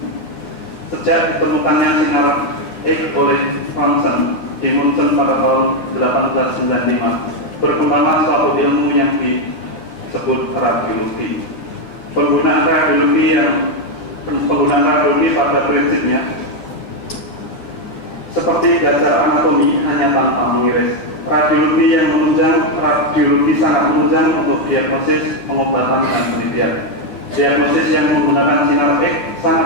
Sejak ditemukannya sinar X oleh Thomson di Munchen pada tahun 1895, berkembanglah suatu ilmu yang disebut radiologi. Penggunaan radiologi pada prinsipnya seperti dasar anatomi hanya tanpa mengiris. Radiologi yang menunjang, radiologi sangat menunjang untuk diagnosis, pengobatan, dan penelitian. Diagnosis yang menggunakan sinar X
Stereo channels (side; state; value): right; late; 10 ms